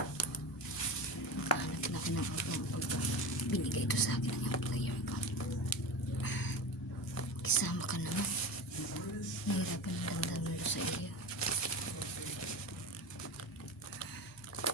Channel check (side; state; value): both; normal; correlation 0.26